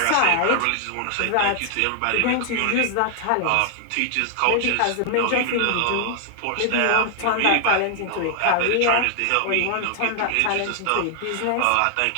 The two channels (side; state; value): both; different; correlation 0.00